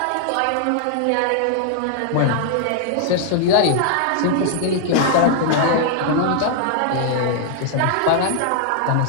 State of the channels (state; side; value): different; both; correlation -0.01